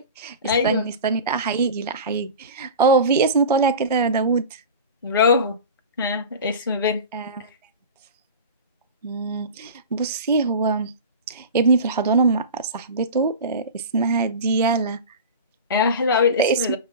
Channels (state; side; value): inverted; both; correlation -0.31